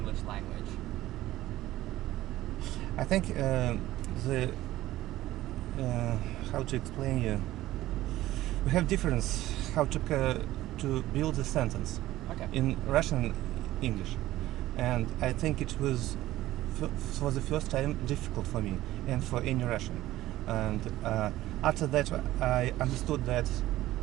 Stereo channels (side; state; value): left; quieter; 15.6 dB